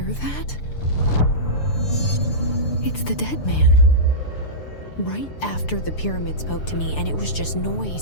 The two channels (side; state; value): right; late; 6.8 ms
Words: that? It's the dead man. Right after the pyramid spoke to me, and it was just